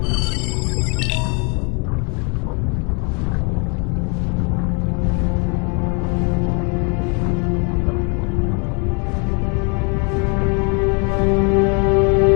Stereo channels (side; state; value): right; quieter; 35.4 dB